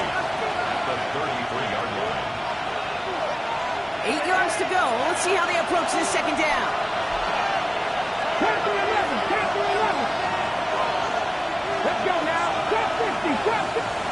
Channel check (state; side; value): identical; both; correlation 1.00